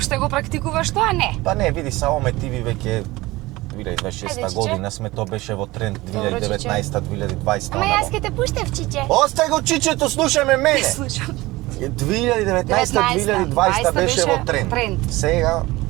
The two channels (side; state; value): left; quieter; 19.9 dB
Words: го практикуваш тоа? Не. Па не, види, само ме тиви веќе 2026 Ајде, чиче. година сме, тоа беше во тренд Добро, 2019-2020. Ама јас ќе те пуштев, чиче. Остај го чичето, слушаме мене. Слушам. 2019-2020 беше во тренд. Сега